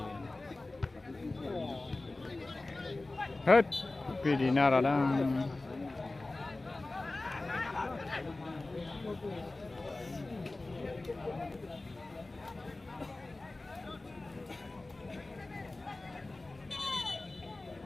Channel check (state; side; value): quieter; right; 3.0 dB